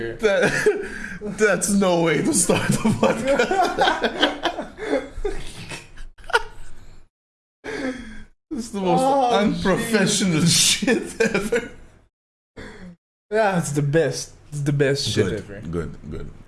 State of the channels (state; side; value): identical; both; correlation 1.00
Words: That's no way to start a podcast. This is the most unprofessional shit ever. Yeah, it's the best. It's the best shit ever.